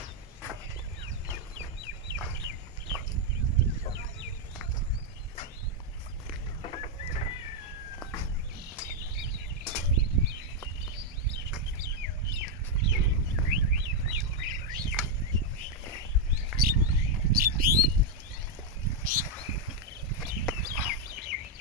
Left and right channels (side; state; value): both; normal; correlation 0.01